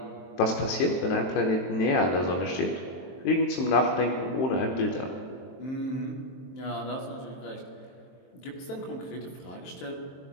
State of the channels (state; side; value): late; right; 23 ms